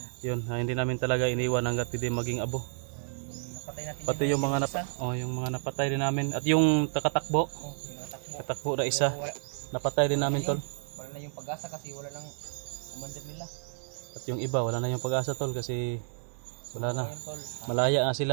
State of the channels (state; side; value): silent; left; 57 dB below the other